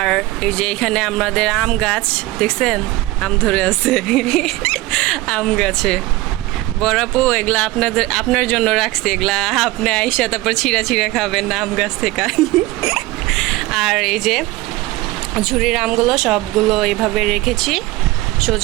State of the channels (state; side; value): quieter; left; 19.0 dB